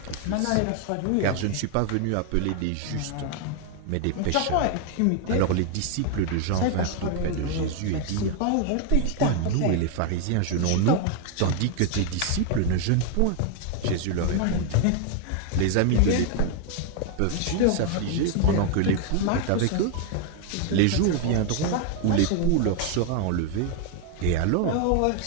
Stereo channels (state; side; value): different; both; correlation 0.01